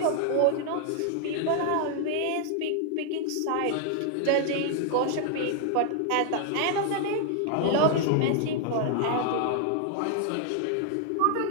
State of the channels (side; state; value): both; different; correlation 0.00